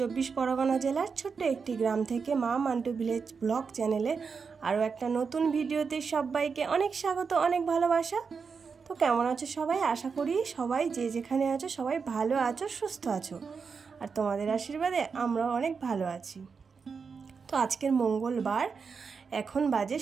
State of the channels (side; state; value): left; quieter; 5.5 dB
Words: পরগনা জেলার ছোট্ট একটি গ্রাম থেকে মা মান্টু ভিলেজ ব্লগ চ্যানেলে আরও একটা নতুন ভিডিওতে সবাইকে অনেক স্বাগত, অনেক ভালোবাসা। তো কেমন আছো সবাই? আশা করি সবাই যে যেখানে আছো সবাই ভালো আছো, সুস্থ আছো, আর তোমাদের আশীর্বাদে আমরাও অনেক ভালো আছি। তো আজকের মঙ্গলবার, এখন বাজে